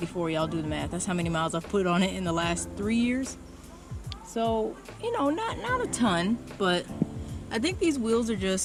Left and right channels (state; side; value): identical; both; correlation 1.00